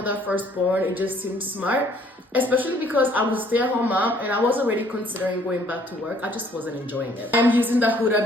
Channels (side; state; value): both; normal; correlation 0.61